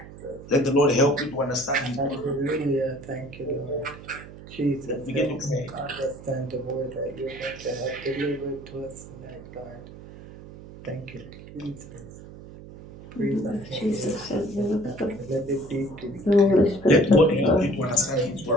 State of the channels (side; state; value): right; noise; hum, 16 dB below the sound